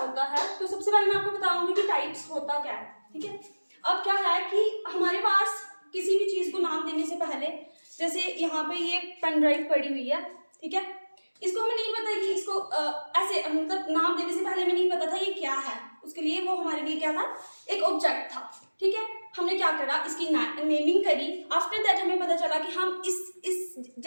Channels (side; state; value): both; inverted; correlation -1.00